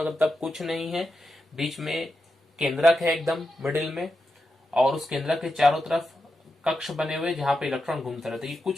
कुछ नहीं है। बीच में केंद्रक है एकदम मिडिल में, और उस केंद्रक के चारों तरफ कक्ष बने हुए जहां पे इलेक्ट्रॉन घूमते रहते हैं। ये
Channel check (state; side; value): normal; both; correlation 0.87